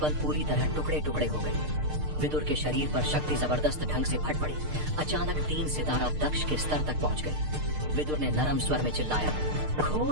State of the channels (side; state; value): left; late; 6.6 ms